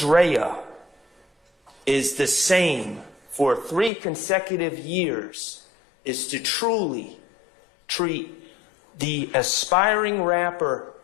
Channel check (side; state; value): right; drops out; at 3.9 s